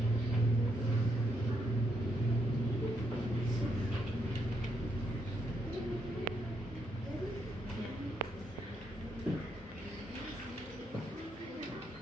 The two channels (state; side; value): normal; both; correlation 0.78